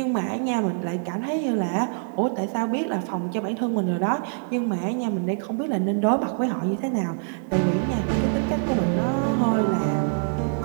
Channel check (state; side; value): silent; left; 58 dB below the other